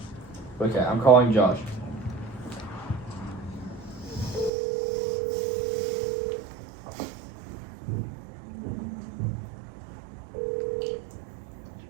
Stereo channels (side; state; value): left; drops out; at 4.5 s